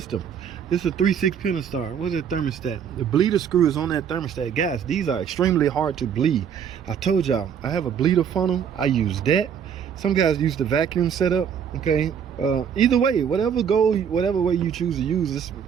This is a 3/6 Pentastar. What's that thermostat? The bleeder screw is on that thermostat. Guys, these are extremely hard to bleed. I told y'all, I have a bleeder funnel. I use that. Some guys use the vacuum setup. Okay. Either way, whatever way you choose to use this,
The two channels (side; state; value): left; quieter; 7.8 dB